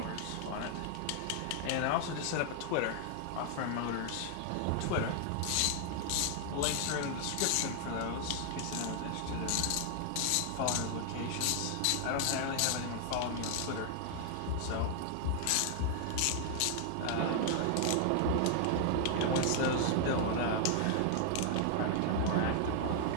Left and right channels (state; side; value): different; both; correlation 0.00